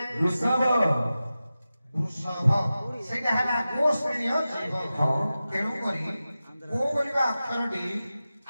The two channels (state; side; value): inverted; both; correlation -0.94